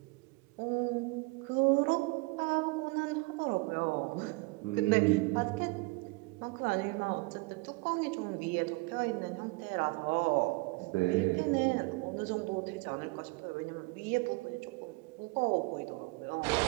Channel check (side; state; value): left; quieter; 26.8 dB